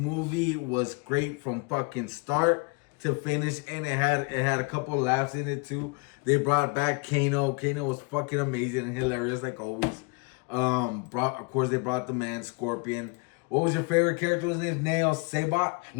was great from fucking start to finish, and it had a couple of laughs in it too. They brought back Kano. Kano was fucking amazing and hilarious like always. Of course, they brought the man Scorpion. What was your favorite character? His name Nail Saibot?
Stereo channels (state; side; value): quieter; right; 31.1 dB